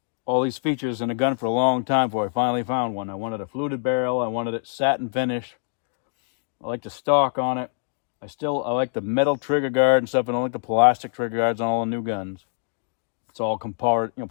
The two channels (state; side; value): silent; right; digital silence